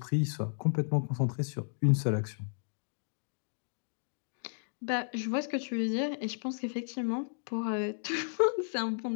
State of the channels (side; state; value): right; silent; digital silence